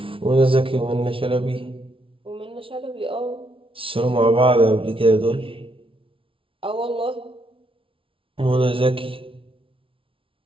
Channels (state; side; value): late; left; 0.25 ms